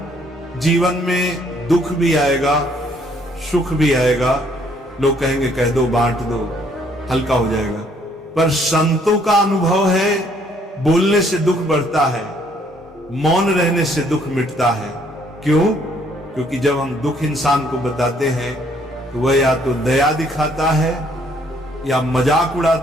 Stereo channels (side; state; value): both; normal; correlation 0.65